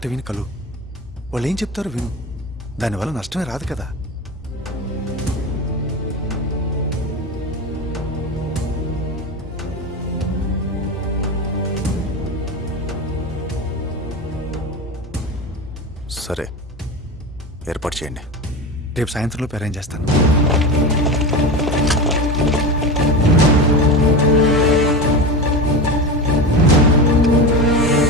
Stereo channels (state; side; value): normal; both; correlation 0.24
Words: విని కలు. వాళ్ళు ఏం చెప్తారో విను. దానివల్ల నష్టమే రాదు కదా. సరే, ఏర్పాటు చేయండి. రేపు సాయంత్రంలోపు అరేంజ్ చేస్తాను.